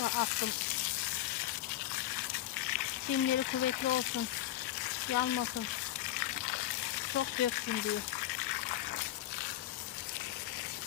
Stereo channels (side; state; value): right; quieter; 13.7 dB